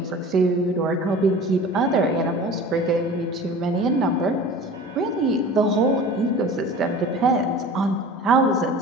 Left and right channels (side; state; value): both; normal; correlation 0.40